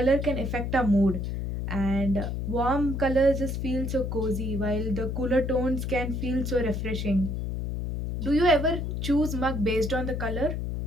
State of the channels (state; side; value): noise; left; hum, 3 dB below the sound